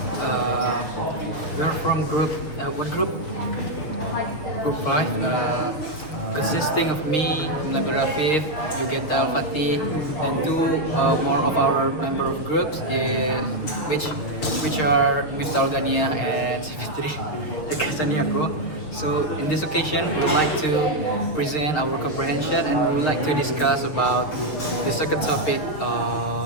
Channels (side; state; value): right; late; 6.8 ms